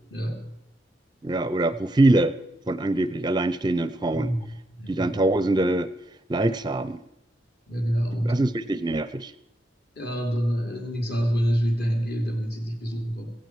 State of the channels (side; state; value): both; normal; correlation 0.82